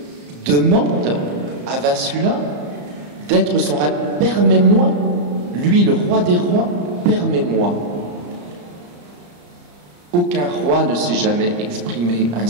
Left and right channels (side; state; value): left; late; 34 ms